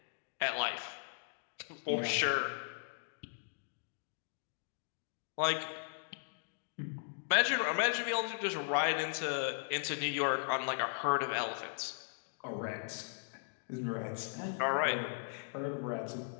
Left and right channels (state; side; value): silent; right; digital silence